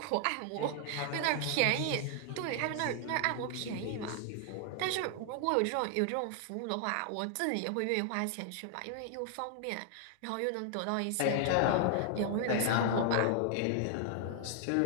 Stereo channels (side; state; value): both; different; correlation 0.00